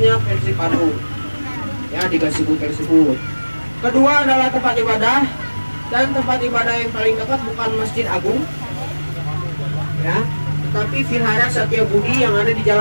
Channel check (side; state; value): both; inverted; correlation -1.00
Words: Persib Bandung ya, di Gasibu tersebut. Kedua adalah tempat ibadah, dan tempat ibadah yang paling dekat bukan Masjid Agung ya, tetapi Vihara Satya Budi yang ada di